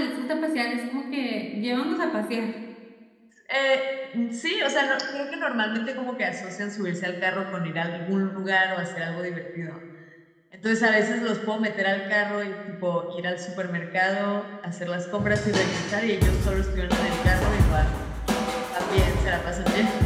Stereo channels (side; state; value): both; identical; correlation 1.00